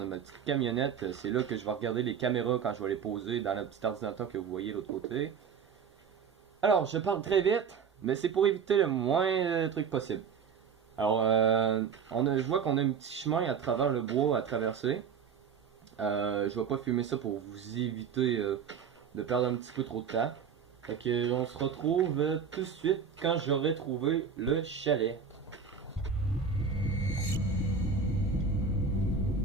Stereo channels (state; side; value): quieter; left; 6.5 dB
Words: a ma petite camionnette. C'est là que je vais regarder les caméras quand je vais les poser dans le petit ordinateur que vous voyez de l'autre côté. Alors, je parle très vite, mais c'est pour éviter le moins de trucs possible. Alors, je vois qu'on a un petit chemin à travers le bois à traverser. Je vais pas filmer ça pour vous éviter de perdre un petit peu trop de temps. Fait que on se retrouve tout de suite quand j'aurai trouvé le chalet.